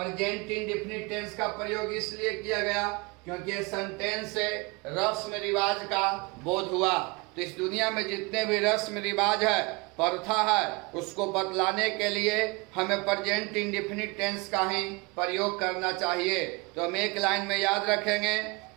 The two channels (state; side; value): quieter; left; 27.0 dB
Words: इंडेफिनिट टेंस का प्रयोग इसलिए किया गया क्योंकि ये सेंटेंस से रस्म रिवाज का बोध हुआ। तो इस दुनिया में जितने भी रस्म रिवाज है प्रथा है, उसको बतलाने के लिए हमें प्रेजेंट इंडेफिनिट टेंस का ही प्रयोग करना चाहिए। तो हम एक लाइन में याद रखेंगे